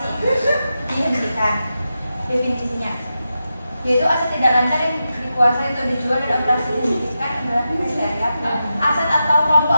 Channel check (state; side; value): inverted; both; correlation -0.90